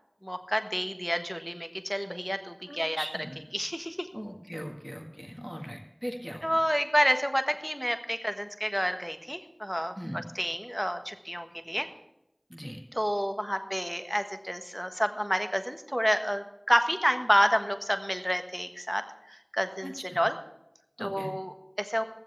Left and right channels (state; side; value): identical; both; correlation 1.00